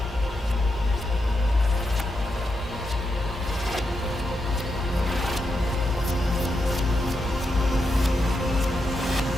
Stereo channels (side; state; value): both; normal; correlation 0.85